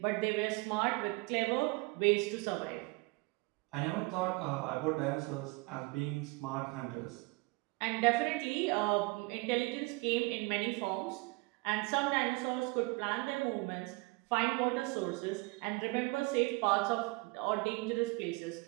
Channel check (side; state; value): left; quieter; 25.9 dB